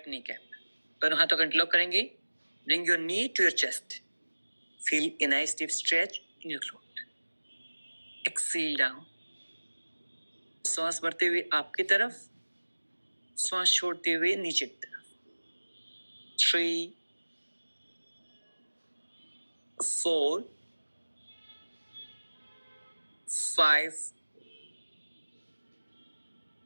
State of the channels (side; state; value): both; inverted; correlation -1.00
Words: kneecap. दोनों हाथों को इंटरलॉक करेंगे. Bring your knee to your chest. Feel a nice deep stretch in your throat. Exhale down. श्वास भरते हुए आपकी तरफ, श्वास छोड़ते हुए नीचे की तरफ। 3, 4, 5,